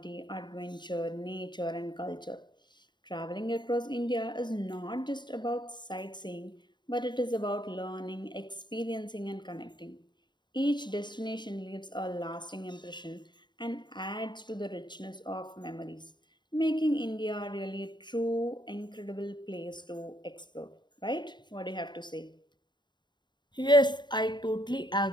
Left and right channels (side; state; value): right; late; 0.22 ms